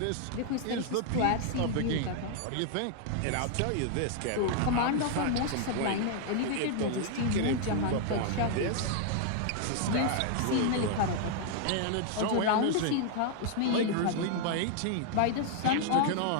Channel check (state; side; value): different; both; correlation 0.00